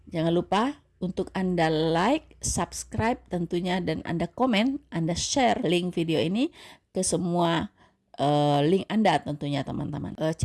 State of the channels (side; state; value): both; identical; correlation 1.00